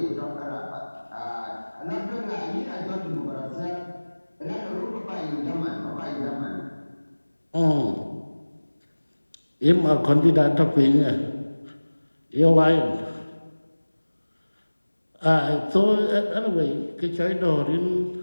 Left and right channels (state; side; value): inverted; both; correlation -1.00